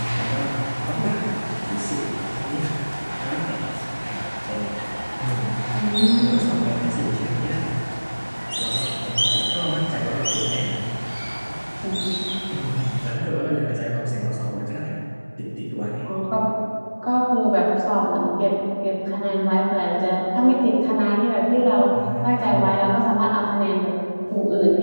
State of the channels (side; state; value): both; inverted; correlation -1.00